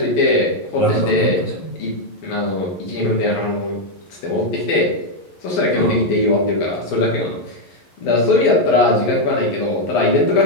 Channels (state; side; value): late; right; 12 ms